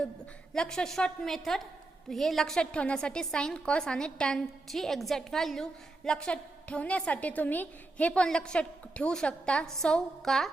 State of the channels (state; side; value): quieter; left; 3.1 dB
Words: लक्षात शॉर्ट मेथड हे लक्षात ठेवण्यासाठी साइन, कॉस आणि टॅनची एक्झॅक्ट व्हॅल्यू लक्षात ठेवण्यासाठी तुम्ही हे पण लक्षात ठेवू शकता. सौ का